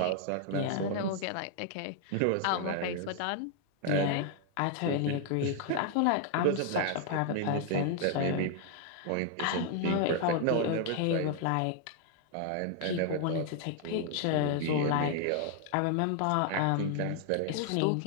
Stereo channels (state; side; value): different; both; correlation 0.00